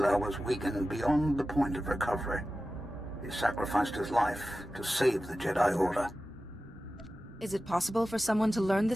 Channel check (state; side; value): normal; both; correlation 0.94